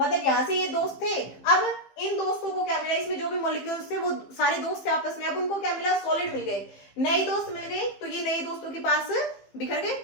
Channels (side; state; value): right; late; 15 ms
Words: यहां से ये दोस्त थे, अब इन दोस्तों को क्या मिला, इसमें जो भी मॉलिक्यूल्स थे वो सारे दोस्त थे आपस में, अब उनको क्या मिला, सॉलिड मिल गए, नए दोस्त मिल गए, तो ये नए दोस्तों के पास बिखर गए,